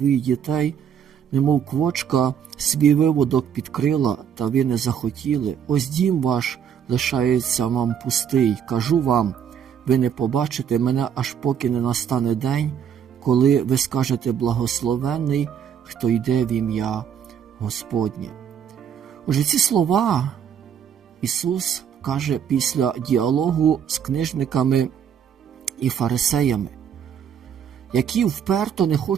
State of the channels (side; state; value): left; quieter; 8.4 dB